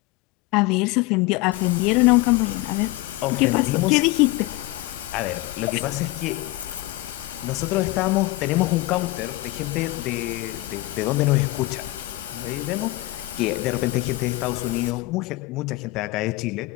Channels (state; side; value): quieter; right; 19.3 dB